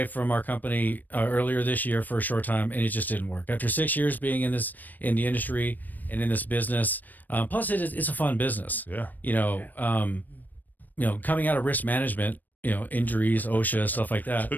from our company earlier this year for a short time, and it just didn't work. After 6 years being in the industry and in this business, plus it's a fun business. Yeah. Coming out of risk management, injuries, OSHA, stuff like that.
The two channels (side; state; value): right; late; 0.087 ms